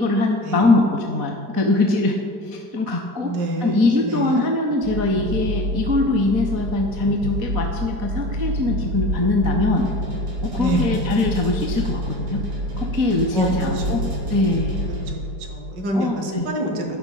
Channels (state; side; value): late; left; 4.7 ms